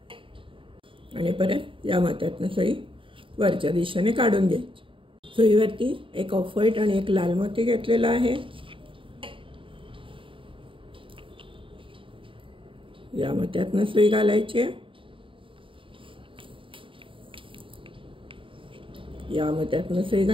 आणि परत या मोत्यातनं सुई वरच्या दिशेने काढून घ्यायची. सुईवरती 1 ऑफ व्हाईट आणि 1 लाल मोती घेतलेला आहे. या मोत्यातनं सुई घालायची, या मोत्यातनं सुई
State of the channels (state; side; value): late; left; 0.25 ms